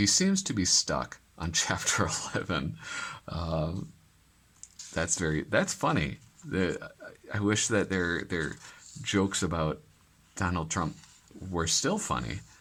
seems to be stuck on chapter 11. That's funny. I wish that their jokes about Donald Trump were still funny,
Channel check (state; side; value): identical; both; correlation 1.00